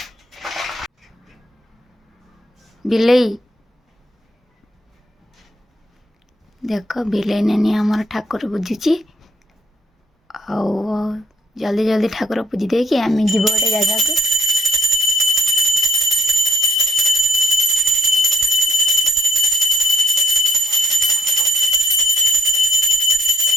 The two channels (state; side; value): normal; both; correlation 0.68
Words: बिलई देख बिलई नानी आमर ठाकुर पूजुची जल्दी जल्दी ठाकुर पूजी दे कि आम जीव गोटे जगह को